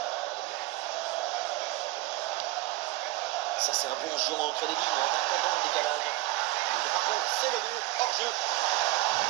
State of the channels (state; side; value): quieter; left; 17.9 dB